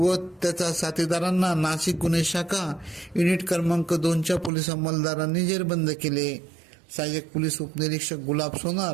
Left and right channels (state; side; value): drops out; left; at 4.5 s